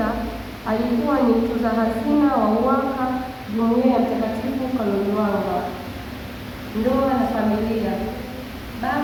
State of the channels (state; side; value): identical; both; correlation 1.00